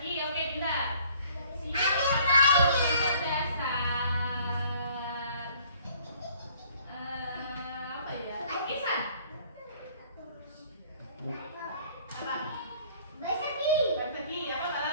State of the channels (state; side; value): inverted; both; correlation -0.57